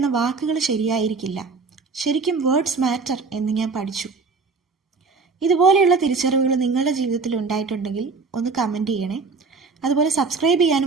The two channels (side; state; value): left; quieter; 4.5 dB